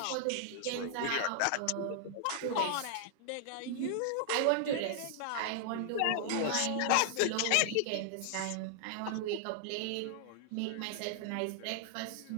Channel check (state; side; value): different; both; correlation 0.00